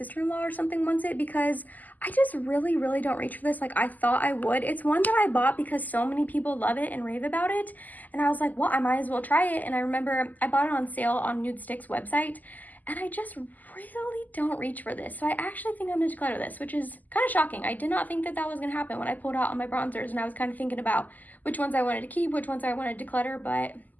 or something wants it, because I just really, really don't reach for this like I thought I would. It's one that I bought because so many people love it and rave about it. And I was like, well, I might as well try it. And I remember I bought it on sale on Nudestix website, and I just really don't reach for this. So I actually think I'm going to declutter this, which is kind of shocking. I did not think that that was going to happen when I pulled out all my bronzers, and I was kind of thinking about which ones I wanted to keep, which ones I wanted to declutter. But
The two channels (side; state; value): right; late; 0.082 ms